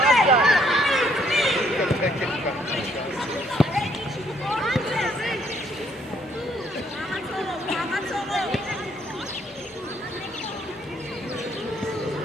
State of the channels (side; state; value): both; normal; correlation 0.67